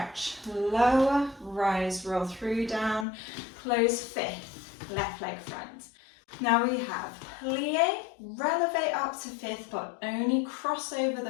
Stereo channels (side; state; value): right; drops out; at 3.1 s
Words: lower, rise, roll through, down, close fifth, left leg front. Now we have plie, relevé up to fifth, but only cross over the